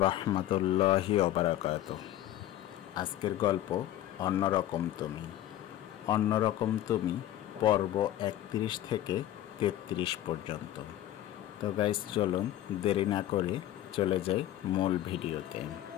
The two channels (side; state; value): right; quieter; 13.0 dB